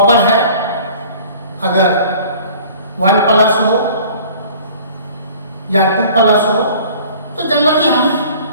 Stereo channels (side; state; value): both; inverted; correlation -0.48